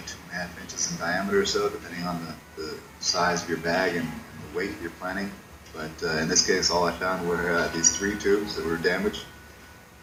inches in diameter or so, depending on the size of your bag and the weight you're planning. But in this case, all I found were these 3 tubes that were damaged.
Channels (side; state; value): both; identical; correlation 1.00